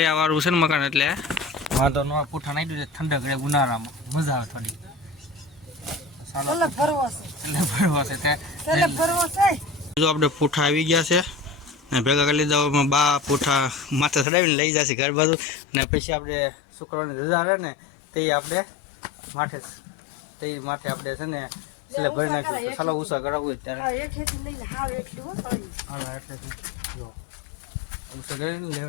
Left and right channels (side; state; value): right; drops out; at 14.2 s